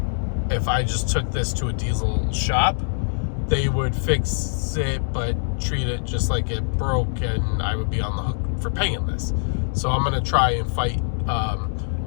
if I just took this to a diesel shop, they would fix it but treat it just like it broke, and I would be on the hook for paying this. So I'm gonna try and fight.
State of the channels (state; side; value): silent; right; digital silence